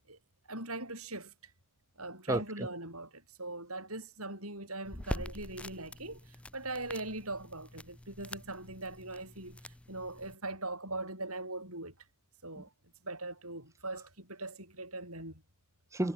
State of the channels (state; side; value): normal; both; correlation -0.01